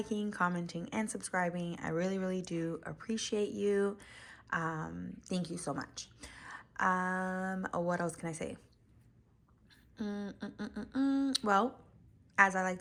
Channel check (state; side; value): identical; both; correlation 1.00